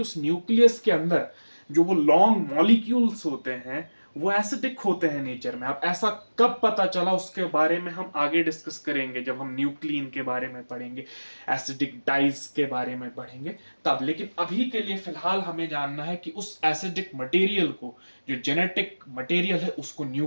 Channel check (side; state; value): both; inverted; correlation -1.00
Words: उस न्यूक्लियस के अंदर जो वो लॉन्ग मॉलिक्यूल्स होते हैं वो एसिडिक होते हैं नेचर में। अब ऐसा कब पता चला उसके बारे में हम आगे डिस्कस करेंगे, जब हम न्यूक्लियन के बारे में पढ़ेंगे, एसिडिक डाइज के बारे में पढ़ेंगे तब। लेकिन अभी के लिए फिलहाल हमें जानना है कि उस एसिडिक मटेरियल को, जो जेनेटिक मटेरियल है, उसको